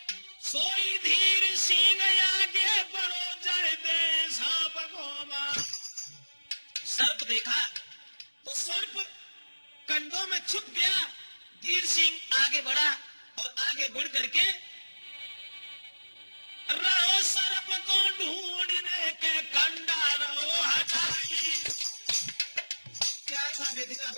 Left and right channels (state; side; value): inverted; both; correlation -1.00